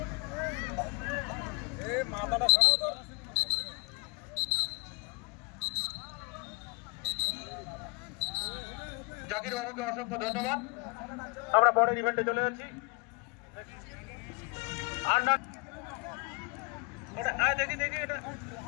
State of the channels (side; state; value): right; quieter; 31.2 dB